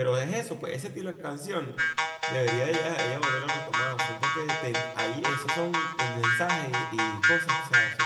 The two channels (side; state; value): both; identical; correlation 1.00